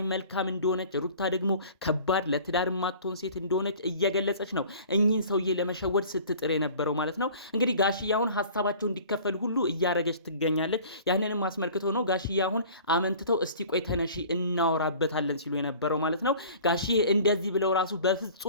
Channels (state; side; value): inverted; both; correlation -0.46